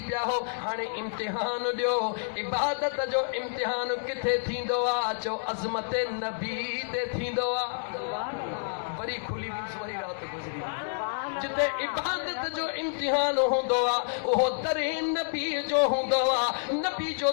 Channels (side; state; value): right; silent; digital silence